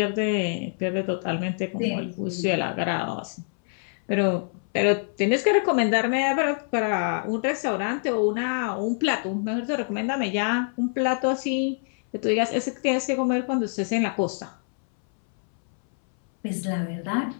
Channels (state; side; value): silent; right; 61 dB below the other